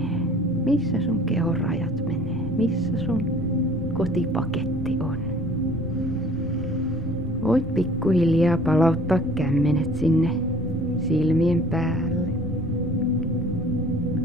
Missä sun kehon rajat menee. Missä sun kotipaketti on. Voit pikkuhiljaa palauttaa kämmenet sinne silmien päälle.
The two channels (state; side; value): normal; both; correlation 0.51